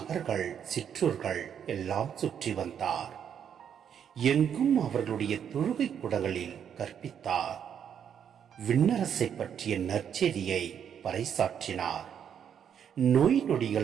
சிற்றூர்கள் எல்லாம் சுற்றி வந்தார். எங்கும் அவர்களுடைய தொழுகை கூடங்களில் கற்பித்தார். விண்ணரசை பற்றிய நற்செய்தியை பறைசாற்றினார். நோய்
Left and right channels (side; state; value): left; quieter; 8.5 dB